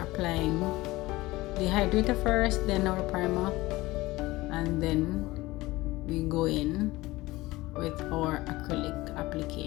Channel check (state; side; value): quieter; right; 19.5 dB